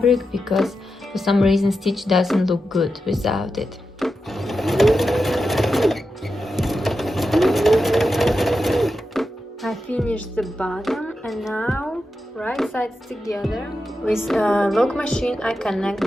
because for some reason stitch doesn't look good without it. I finished the bottom, and now right sides together. With lock machine I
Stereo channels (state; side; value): normal; both; correlation 0.89